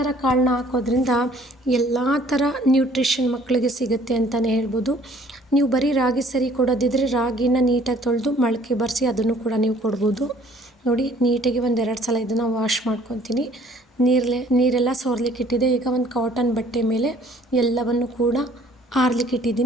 ಕಾಳನ್ನ ಹಾಕೋದ್ರಿಂದ ಎಲ್ಲ ಥರ ನ್ಯೂಟ್ರಿಷನ್ ಮಕ್ಕಳಿಗೆ ಸಿಗುತ್ತೆ ಅಂತಲೇ ಹೇಳ್ಬೋದು. ನೀವು ಬರೀ ರಾಗಿ ಸರಿ ಕೊಡೋದಿದ್ರೆ ರಾಗಿನ ನೀಟಾಗಿ ತೊಳೆದು ಮೊಳಕೆ ಬರೆಸಿ ಅದನ್ನು ಕೂಡ ನೀವು ಕೊಡ್ಬೋದು. ನೋಡಿ, ನೀಟಾಗಿ 1-2 ಸಲ ಇದನ್ನು ವಾಶ್ ಮಾಡ್ಕೊತೀನಿ. ನೀರೆಲ್ಲ ಸೋರ್ಲಿಕ್ಕೆ ಇಟ್ಟಿದೆ. ಈಗ ಒಂದು ಕಾಟನ್ ಬಟ್ಟೆ ಮೇಲೆ ಎಲ್ಲವನ್ನು ಕೂಡ ಆರ್ಲಿಕ್ಕೆ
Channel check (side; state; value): both; normal; correlation 0.57